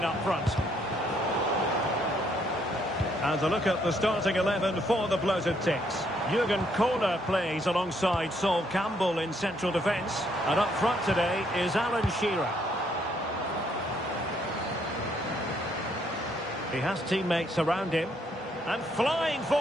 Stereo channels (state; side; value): normal; both; correlation 0.70